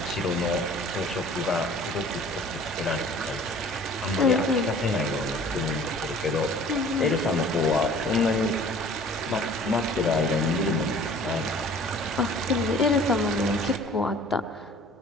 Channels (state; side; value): normal; both; correlation 0.49